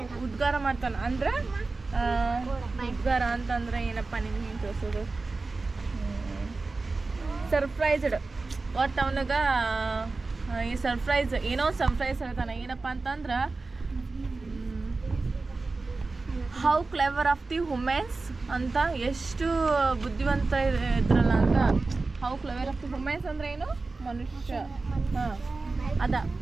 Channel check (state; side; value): quieter; left; 3.7 dB